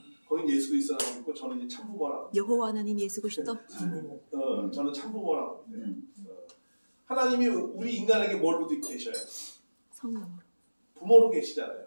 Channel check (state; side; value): inverted; both; correlation -1.00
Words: 거긴 예수 그리스도라고 있고 저는 이제 참부모라고. 여호와 하나님 예수 그리스도. 저는 참부모라고 합니다. 하나님이 우리 인간에게 뭘로 계셔요? 성령으로. 부모로 계시잖아요.